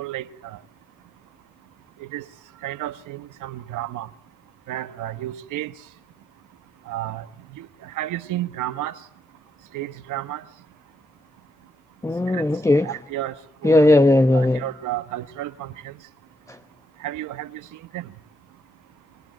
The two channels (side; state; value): both; normal; correlation 0.76